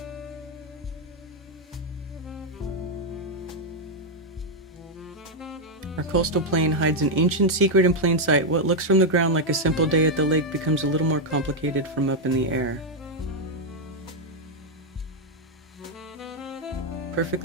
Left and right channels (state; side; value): normal; both; correlation 0.00